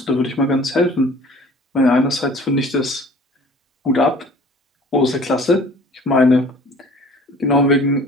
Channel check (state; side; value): normal; both; correlation 0.48